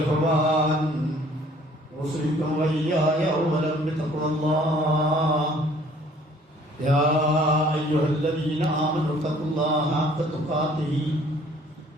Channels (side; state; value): both; normal; correlation 0.56